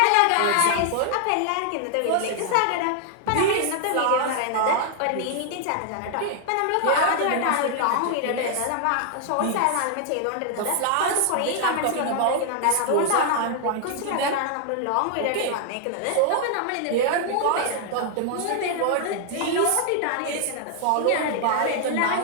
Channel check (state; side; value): different; both; correlation 0.00